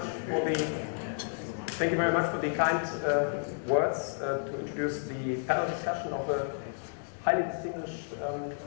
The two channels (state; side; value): silent; right; digital silence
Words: for the kind words to introduce the panel discussion of a highly distinguished